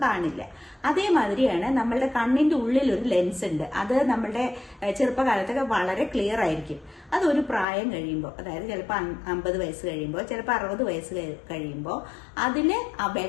കാണില്ല. അതേമാതിരിയാണ് നമ്മളുടെ കണ്ണിന്റെ ഉള്ളിൽ ഒരു ലെൻസ് ഉണ്ട്. അത് നമ്മളുടെ ചെറുപ്പകാലത്തൊക്കെ വളരെ ക്ലിയർ ആയിരിക്കും. അതൊരു പ്രായം കഴിയുമ്പോൾ, അതായത് ചിലപ്പോൾ 50 വയസ്സ് കഴിയുമ്പോൾ, ചിലപ്പോൾ 60 വയസ്സ് കഴിയുമ്പോൾ അതിന് ആ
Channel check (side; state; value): right; drops out; at 7.7 s